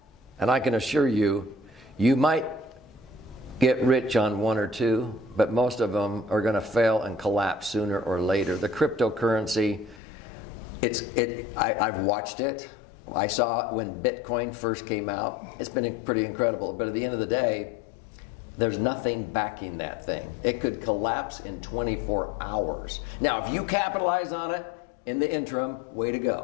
and I can assure you, you might get rich on 1 or 2, but most of them are going to fail and collapse sooner or later. The cryptocurrency, I've watched it. I saw it when Bitcoin first came out. It's been pretty incredible, but at the end of the day, there's nothing backing that thing. It could collapse in 24 hours. Now, if you capitalize on it in the interim, way to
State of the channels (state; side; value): drops out; right; at 10.0 s